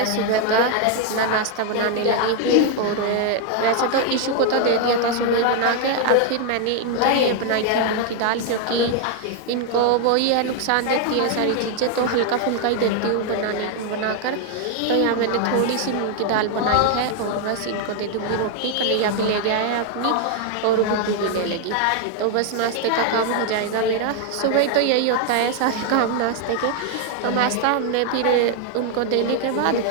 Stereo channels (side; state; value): both; different; correlation 0.00